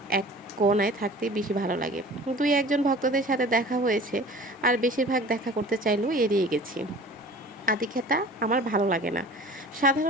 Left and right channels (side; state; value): both; normal; correlation 0.43